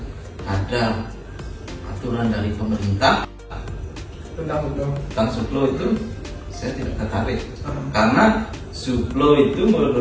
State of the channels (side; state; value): both; identical; correlation 1.00